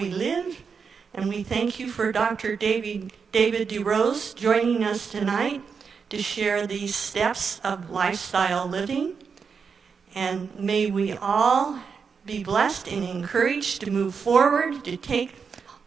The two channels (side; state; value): left; quieter; 5.8 dB